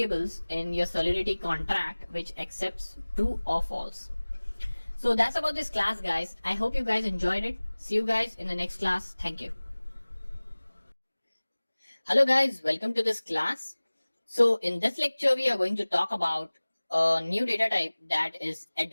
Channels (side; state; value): both; inverted; correlation -1.00